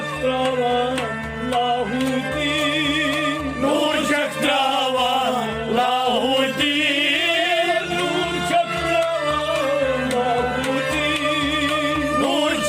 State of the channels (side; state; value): both; identical; correlation 1.00